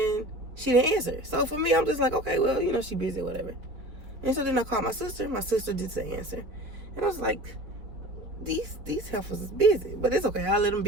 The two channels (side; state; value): left; late; 4.8 ms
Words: she didn't answer. So for me, I'm just like, okay, well, you know, she busy or whatever. And so then I called my sister. My sister did say answer. And I was like, these heifers is busy. But it's okay. I'll let them